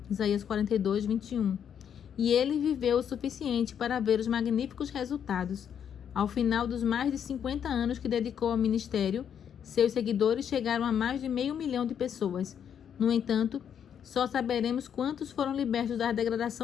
Isaías 42:21. E ele viveu o suficiente para ver os magníficos resultados. Ao final dos mais de 50 anos que dedicou ao ministério, seus seguidores chegaram a mais de 500 mil de pessoas. No entanto, só saberemos quantos foram libertos da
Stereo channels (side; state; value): right; quieter; 8.5 dB